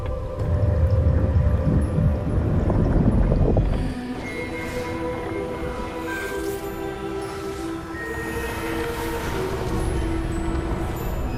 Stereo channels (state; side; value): identical; both; correlation 1.00